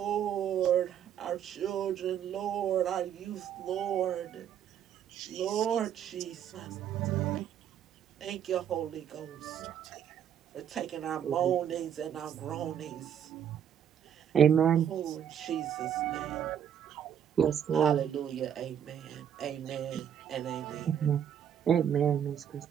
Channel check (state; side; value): quieter; left; 9.2 dB